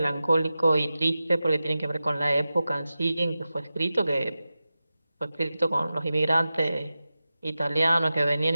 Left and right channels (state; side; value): inverted; both; correlation -0.94